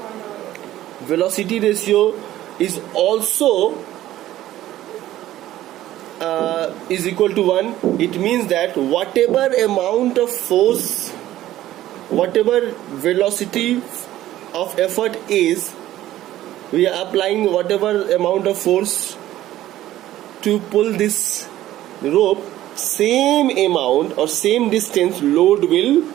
is also is equal to 1, it means that whatever amount of force, whatever velocity of effort is, we are applying whatever amount of force to pull this rope, same amount or same distance load will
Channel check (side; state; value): left; quieter; 14.1 dB